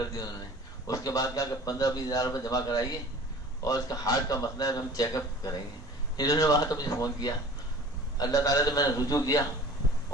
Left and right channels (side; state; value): both; normal; correlation 0.43